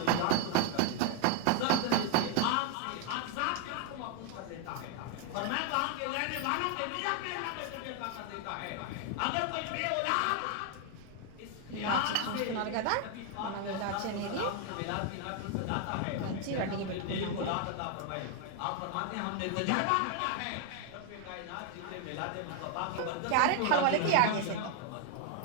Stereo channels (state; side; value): different; both; correlation 0.00